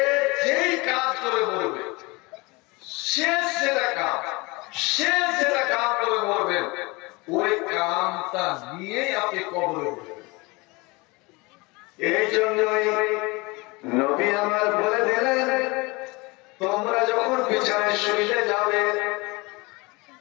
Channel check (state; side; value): quieter; right; 24.9 dB